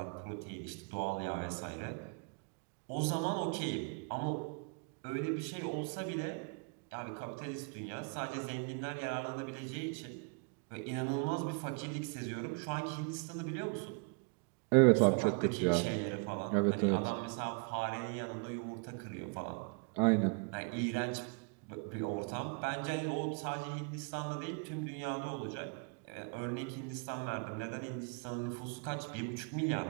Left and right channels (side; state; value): left; quieter; 37.2 dB